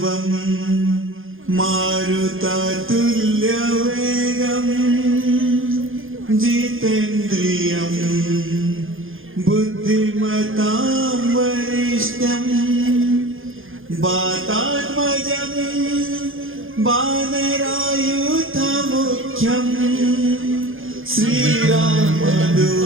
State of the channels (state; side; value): late; left; 0.59 ms